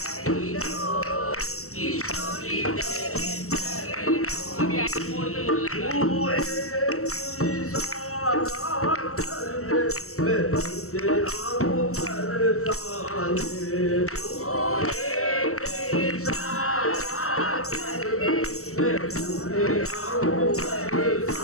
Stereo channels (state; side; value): late; right; 0.63 ms